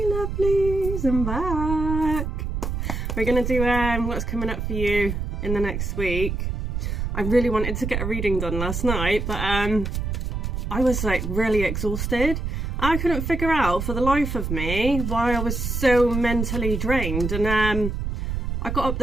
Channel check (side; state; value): right; noise; rumble, 3 dB below the sound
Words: I'm back. We're gonna do what's coming up for you in the next week. I really wanted to get a reading done last night, but I was like really exhausted. I couldn't figure out for the life of me why I was so mentally drained, and I got up